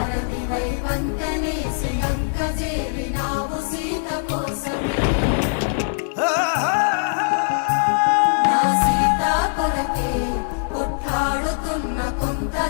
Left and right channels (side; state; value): right; silent; digital silence